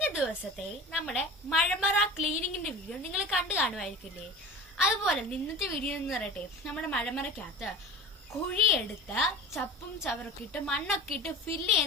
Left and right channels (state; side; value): normal; both; correlation 0.35